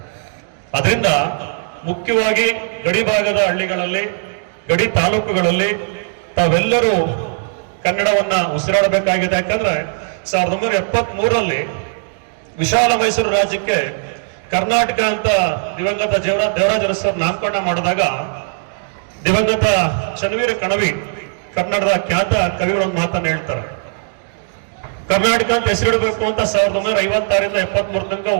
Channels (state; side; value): silent; left; digital silence